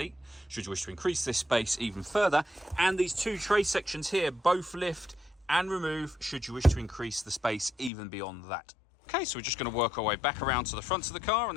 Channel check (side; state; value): right; drops out; at 7.9 s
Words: should you wish to increase this space even further. And these two tray sections here both lift and remove should you wish to increase the space even beyond that. Okay, so we're just going to work our way back around to the front of the car, and